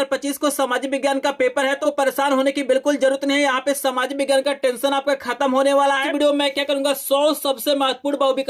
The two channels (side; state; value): both; identical; correlation 1.00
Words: को सामाजिक विज्ञान का पेपर है तो परेशान होने की बिल्कुल जरूरत नहीं है। यहाँ पे सामाजिक विज्ञान का टेंशन आपका खत्म होने वाला है। वीडियो में क्या करूंगा, 100 सबसे महत्वपूर्ण